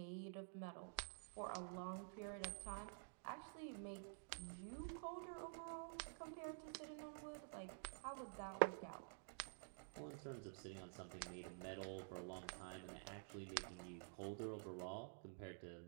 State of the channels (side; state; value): left; silent; digital silence